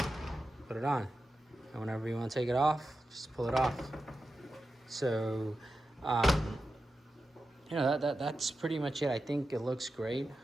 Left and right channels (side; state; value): both; normal; correlation 0.91